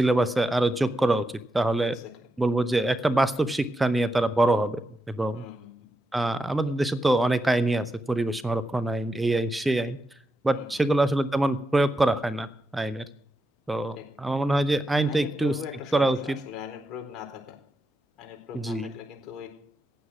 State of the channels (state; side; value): normal; both; correlation 0.86